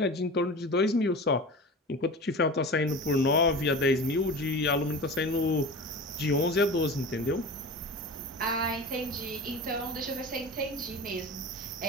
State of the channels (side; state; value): both; normal; correlation 0.33